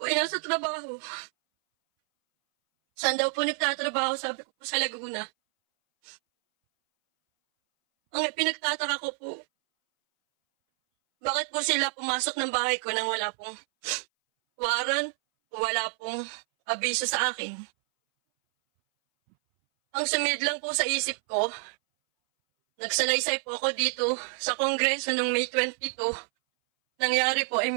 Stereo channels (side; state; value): left; silent; 59 dB below the other